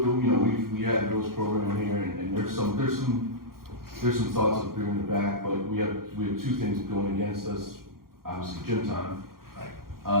we had a girls' program here, and there's some thoughts of bringing it back, but we have 2 things going against us. Obviously, gym time.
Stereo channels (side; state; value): left; late; 0.92 ms